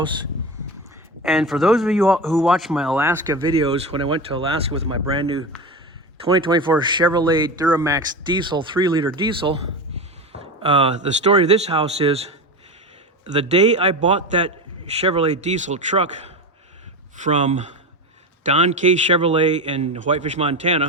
And for those of you who watch my Alaska videos, when I went to Alaska with my brand new 2024 Chevrolet Duramax diesel, 3-liter diesel, the story of this house is the day I bought that Chevrolet diesel truck from Don K. Chevrolet in Whitefish,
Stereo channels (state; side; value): normal; both; correlation 0.23